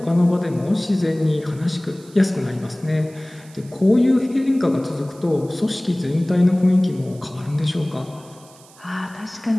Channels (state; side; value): noise; right; hiss, 25 dB below the sound